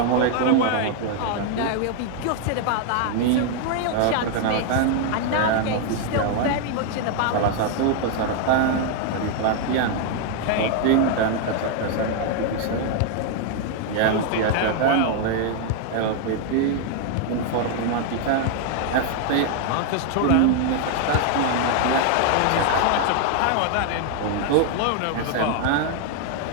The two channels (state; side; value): different; both; correlation 0.00